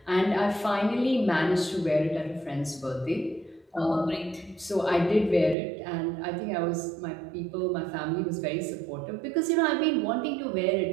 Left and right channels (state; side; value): drops out; left; at 5.6 s